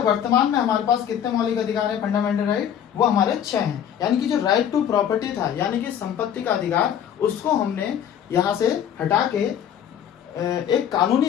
वर्तमान में हमारे पास कितने मौलिक अधिकार है? फंडामेंटल राइट वो हमारे 6 हैं। यानी कि जो राइट टू प्रॉपर्टी था, यानी कि संपत्ति का अधिकार, उसको हमने यहाँ से हटा के एक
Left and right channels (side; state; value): right; quieter; 9.3 dB